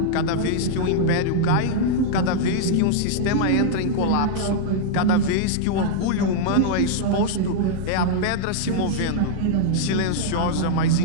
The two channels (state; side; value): different; both; correlation -0.01